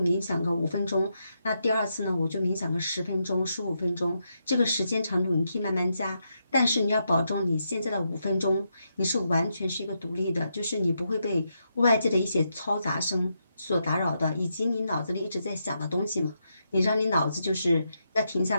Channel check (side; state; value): both; inverted; correlation -0.82